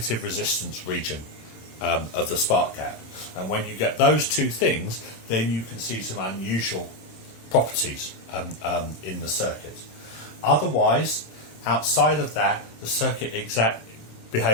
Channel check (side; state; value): right; late; 27 ms